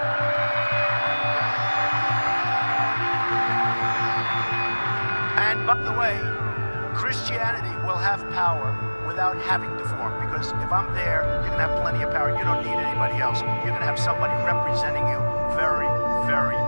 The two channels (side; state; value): both; inverted; correlation -1.00